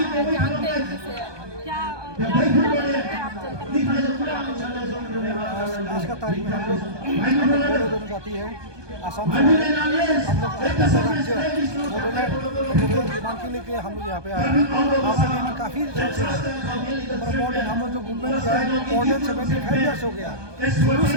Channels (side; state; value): left; late; 1.2 ms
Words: जानते हैं किसे, क्या आप आज का तारीख में हम लोग दोनों जाती है आसाम से हम लोग राज्य बोडोलैंड मांग के लेके हम लोग यहाँ पे आए हैं। यहाँ पे लेने काफ़ी मॉडर्न हम लोग जो मूवमेंट किया है मॉडर्न 75 ईयर्स हो गया। शुरू